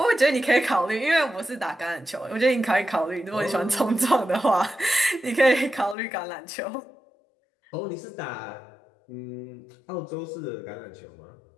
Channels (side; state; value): right; drops out; at 6.0 s